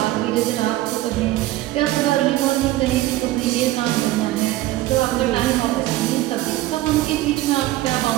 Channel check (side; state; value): left; quieter; 16.2 dB